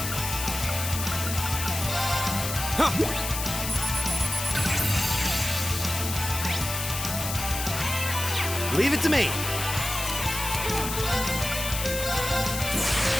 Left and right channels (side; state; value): left; noise; hiss, 5 dB below the sound